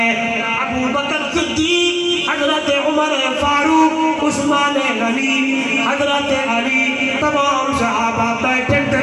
ابو بکر صدیق حضرت عمر فاروق عثمان غنی حضرت علی تمام صحابہ بیٹھے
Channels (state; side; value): identical; both; correlation 1.00